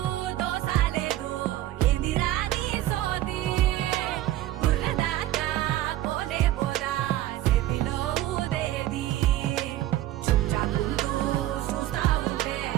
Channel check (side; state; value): left; quieter; 14.5 dB